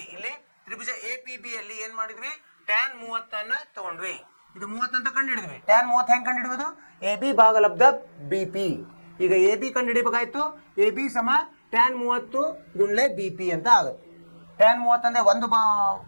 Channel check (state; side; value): inverted; both; correlation -1.00